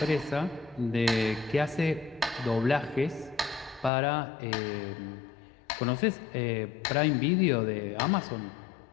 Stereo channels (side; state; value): right; drops out; at 3.9 s